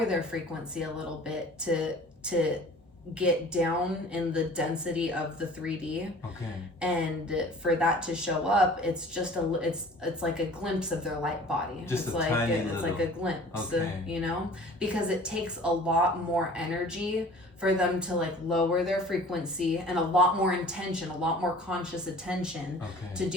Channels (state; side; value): normal; both; correlation 0.46